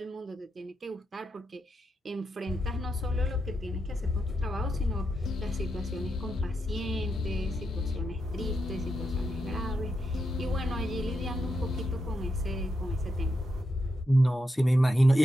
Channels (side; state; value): both; normal; correlation 0.85